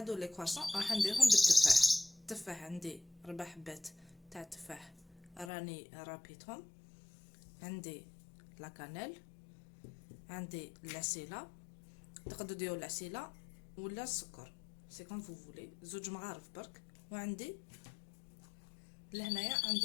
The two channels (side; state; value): right; drops out; at 5.5 s